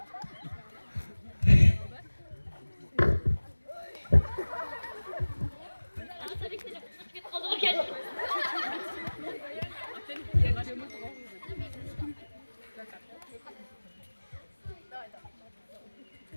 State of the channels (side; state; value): both; inverted; correlation -1.00